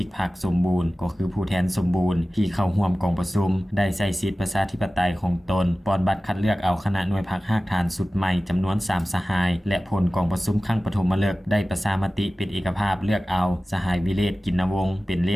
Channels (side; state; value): both; normal; correlation 0.96